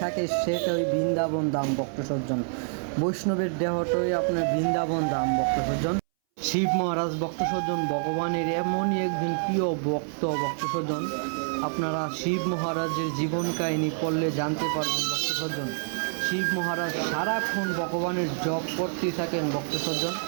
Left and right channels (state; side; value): silent; left; 60 dB below the other